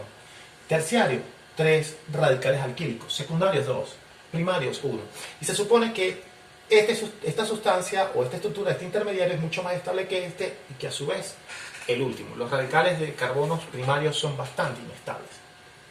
Terciario, 3 radicales alquílicos. Secundarios, 2. Primarios, 1. Y se supone que esta sustancia o esta estructura, este intermediario es mucho más estable que este y que a su vez el último. Los radicales de carbonos primarios son bastante inestables.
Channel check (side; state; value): both; identical; correlation 1.00